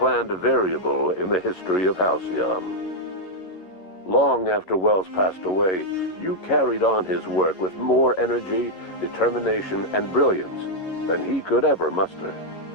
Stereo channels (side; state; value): right; late; 11 ms